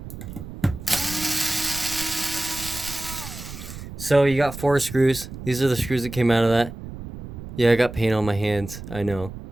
So you got 4 screws. These are the screws that came out of that. Yeah, I got paint on my hands, I know.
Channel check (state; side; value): noise; right; rumble, 11 dB below the sound